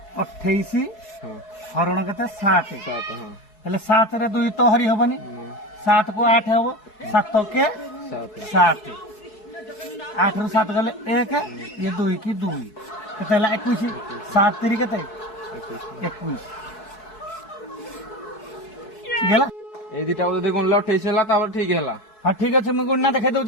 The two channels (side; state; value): right; late; 4.7 ms